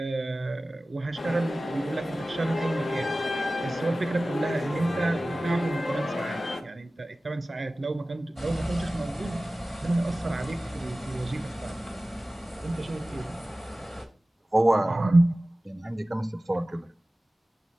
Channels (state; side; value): normal; both; correlation 0.97